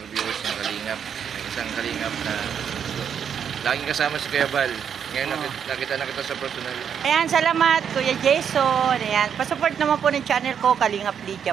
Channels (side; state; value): left; quieter; 7.9 dB